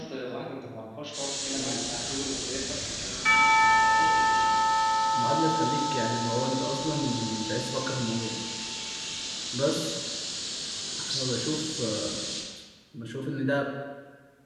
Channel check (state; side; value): identical; both; correlation 1.00